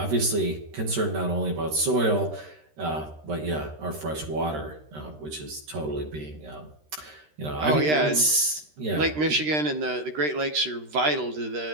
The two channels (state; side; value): late; left; 13 ms